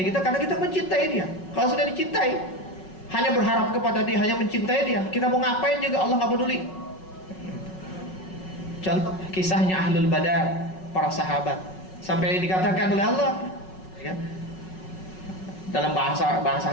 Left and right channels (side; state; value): right; late; 5.4 ms